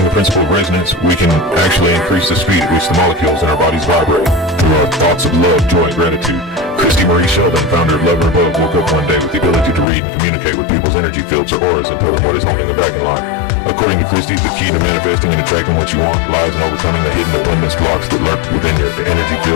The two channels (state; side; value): drops out; right; at 9.9 s